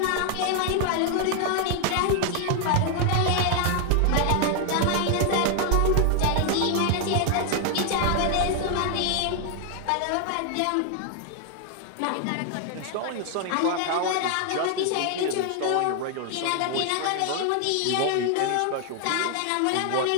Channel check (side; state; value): both; different; correlation 0.00